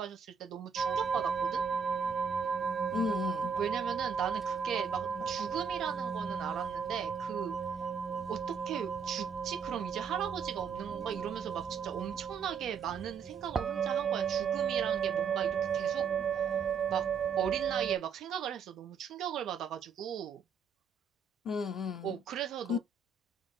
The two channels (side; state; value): left; quieter; 6.1 dB